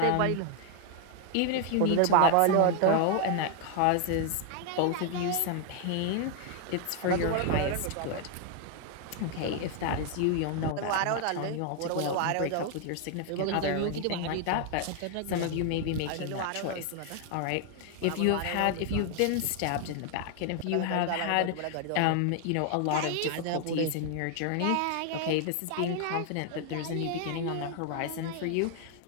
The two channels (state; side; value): different; both; correlation 0.00